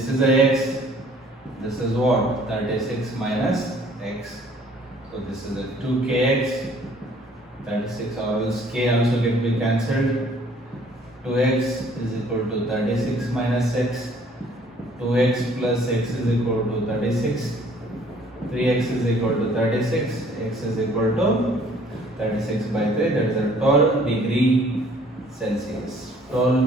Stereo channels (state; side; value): normal; both; correlation 0.58